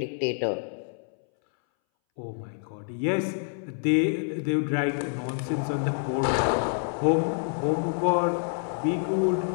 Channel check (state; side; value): silent; right; 60 dB below the other